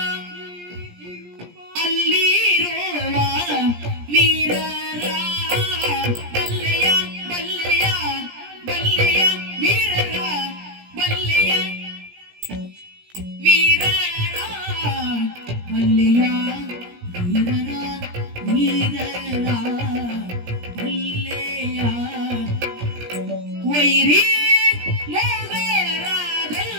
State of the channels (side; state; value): left; late; 17 ms